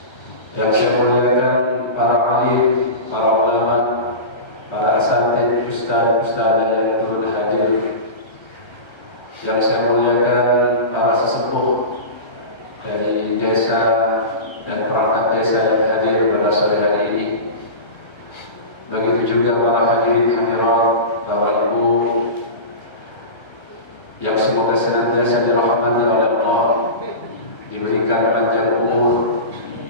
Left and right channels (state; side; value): late; right; 1.3 ms